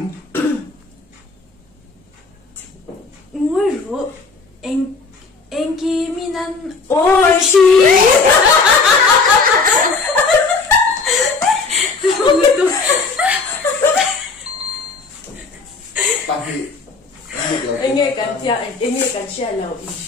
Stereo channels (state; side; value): quieter; right; 4.3 dB